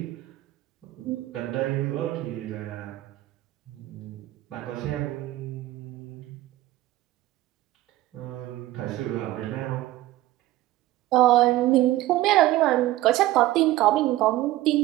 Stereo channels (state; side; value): quieter; left; 16.3 dB